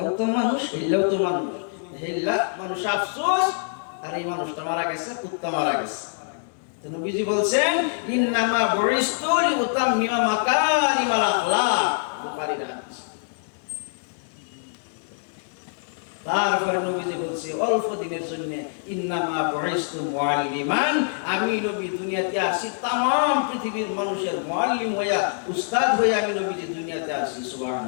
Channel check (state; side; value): silent; right; digital silence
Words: তো মানুষ, হেললেও তো মানুষ, হেললা মানুষ আফসোস, আর এই মানুষটা মারা গেছে, কুত্তা মারা গেছে। নবীজি বলছেন ইন্নামা বুইস্তু লিউতাম্মিমা মাকারিমাল আখলাক, বুখারীর হাদিস। তারপরে নবীজি বলছে অল্প দিনের জন্য ইন্নামা বুইস্তু মুআল্লিমান, আমি নবী দুনিয়াতে আসি तमाम পৃথিবীর মানুষের মুআল্লিম হইয়া, উস্তাদ হইয়া আমি নবীজি দুনিয়াতে আসি।